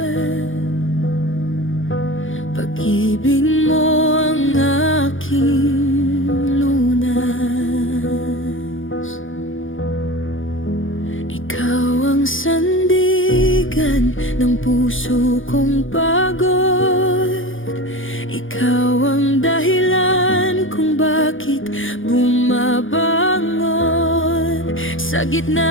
Pag-ibig mo ang aking lunas. Ikaw ang sandigan ng puso kong pagod. Ikaw ang dahilan kung bakit bumabangon sa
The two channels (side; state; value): right; late; 0.58 ms